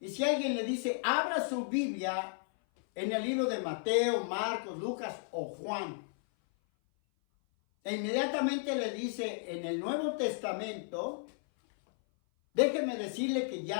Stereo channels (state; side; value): silent; right; 55 dB below the other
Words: si alguien le dice, abra su Biblia en el libro de Mateo, Marcos, Lucas o Juan, e inmediatamente le dice en el Nuevo Testamento, déjeme decirle que